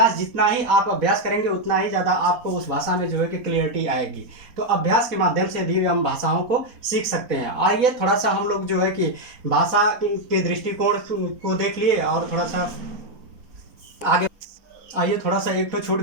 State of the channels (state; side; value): late; left; 4.2 ms